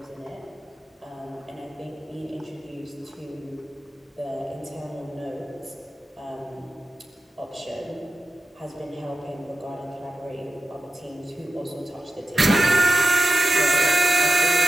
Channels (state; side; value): normal; both; correlation 0.93